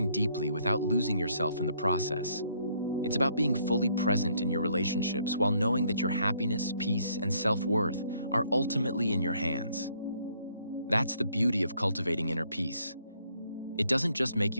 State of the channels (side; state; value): both; inverted; correlation -0.68